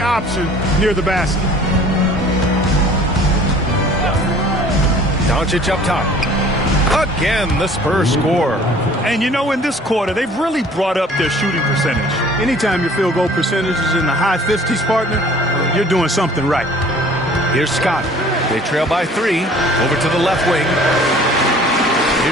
near the basket. Doncic up top. Again, the Spurs score. And you know, in this quarter, they've really brought up their shooting percentage. Anytime your field goal percentage is in the high 50s, partner, you're doing something right. Here's Scott. They trail by 3. Over to the left wing.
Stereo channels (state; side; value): normal; both; correlation 0.51